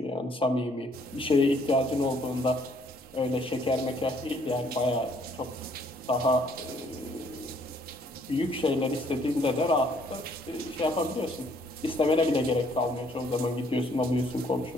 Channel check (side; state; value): both; normal; correlation 0.64